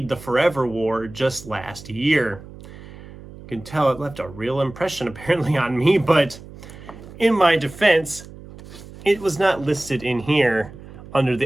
The Forever War just last year. You can tell it left a real impression apparently on me, but in my defense, it was not listed in here under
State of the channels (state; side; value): noise; right; hum, 17 dB below the sound